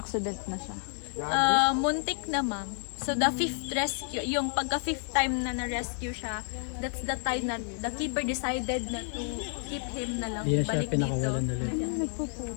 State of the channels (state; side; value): silent; right; 58 dB below the other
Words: na siya. Muntik na, ma'am. So, the 5th rescue, yung pagka 5th time na na-rescue siya, that's the time na the keeper decided na to keep him na lang. Hindi na siya Balik dito. pinakawalan ulit.